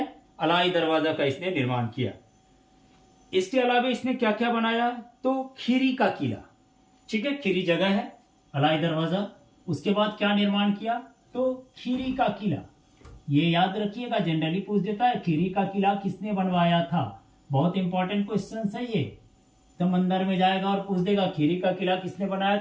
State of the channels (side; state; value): both; identical; correlation 1.00